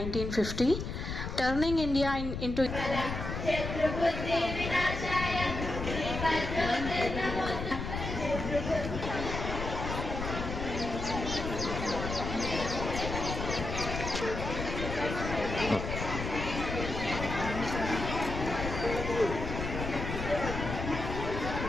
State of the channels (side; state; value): left; noise; rumble, 5 dB below the sound